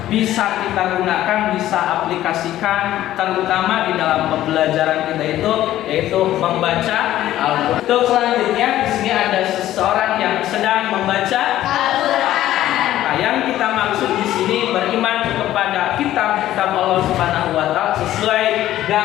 bisa kita gunakan, bisa aplikasikan terutama di dalam pembelajaran kita itu yaitu membaca Al-Qur'an. Untuk selanjutnya di sini ada seseorang yang sedang membaca Al-Qur'an. Nah, yang kita maksud di sini beriman kepada kitab-kitab Allah Subhanahu wa taala sesuai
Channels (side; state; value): right; quieter; 13.6 dB